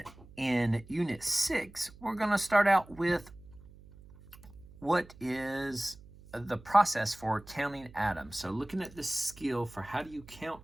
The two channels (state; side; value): noise; right; hum, 21 dB below the sound